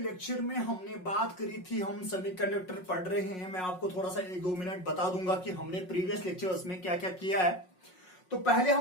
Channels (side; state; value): right; late; 5.5 ms